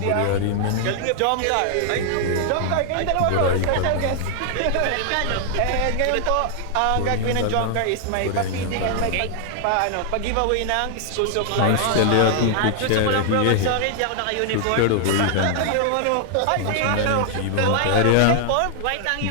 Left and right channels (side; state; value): both; different; correlation 0.00